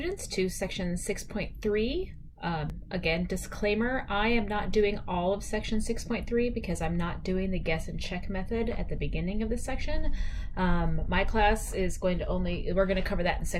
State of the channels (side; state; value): both; identical; correlation 1.00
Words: to section 6.3. Again, disclaimer, I am not doing all of section 6.3 because I'm not doing the guess and check method at the beginning of this section. My class is we're going to cover that in